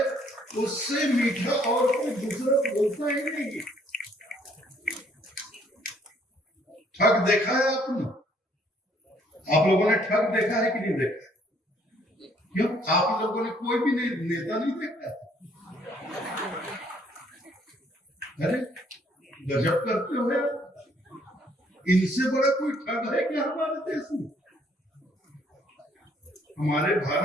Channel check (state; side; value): normal; both; correlation 0.64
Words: उससे मीठा और कोई दूसरा बोलता ही नहीं। ठग देखा है आपने? आप लोगों ने ठग देखा है कि नहीं देखा? क्यों? आप लोगों ने कोई भी नेता नहीं देखा? अरे गजब करते हो यार, इनसे बड़ा कोई ठग है क्या हमारे देश में? हमारे